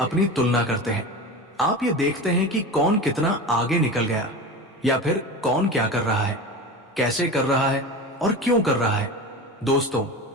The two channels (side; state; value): both; normal; correlation 0.28